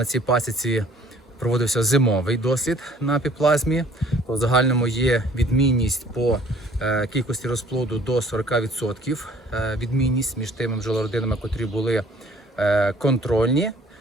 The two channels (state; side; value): normal; both; correlation 0.55